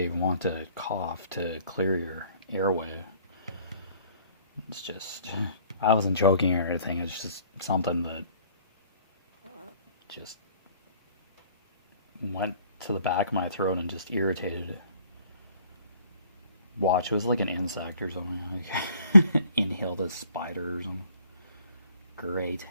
want to cough to clear your airway. It's just, I wasn't joking or anything, it's just something that just went to the back of my throat and just irritated it. Watch, it was like an insect or something. Like inhaled a spider or something. Great.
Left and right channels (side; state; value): both; inverted; correlation -0.57